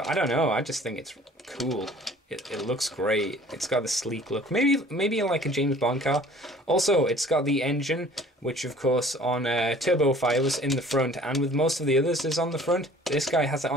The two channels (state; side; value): normal; both; correlation 0.50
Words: I don't know. I just think it's cool. It looks great. It's got the sleek look. Maybe like a James Bond car. Also, it's got the engine, which of course on Turbofire was in the front, and with most of the others is on the front. This guy has it